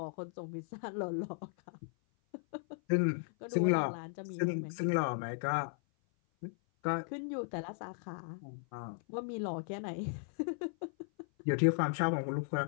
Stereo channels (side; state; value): right; silent; 53 dB below the other